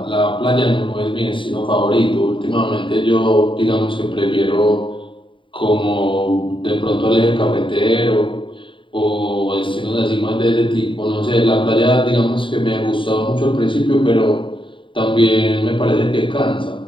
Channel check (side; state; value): right; late; 0.24 ms